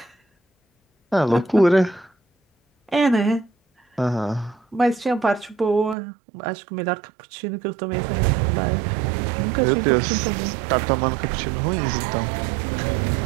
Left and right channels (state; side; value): drops out; left; at 6.0 s